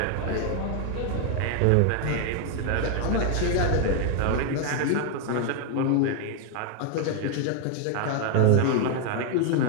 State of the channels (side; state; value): both; different; correlation 0.00